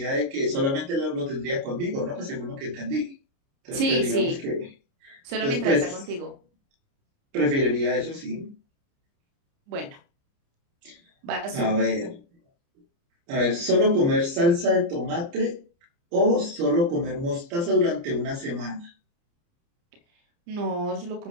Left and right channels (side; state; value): left; late; 29 ms